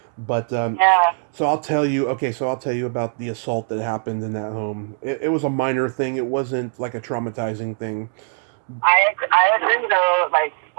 But so I'll tell you. Okay, so I'll tell you about the assault that happened in that home. It was a minor thing. It wasn't like a traumatizing thing. I agree though, like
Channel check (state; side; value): silent; left; digital silence